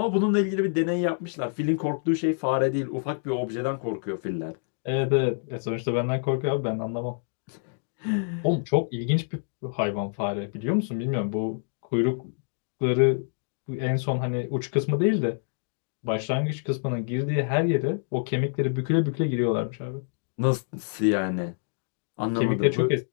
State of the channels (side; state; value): right; silent; digital silence